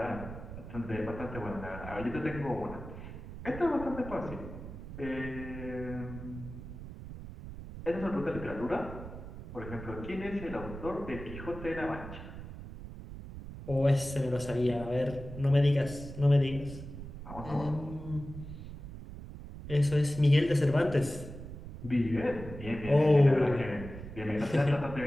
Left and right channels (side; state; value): right; noise; rumble, 11 dB below the sound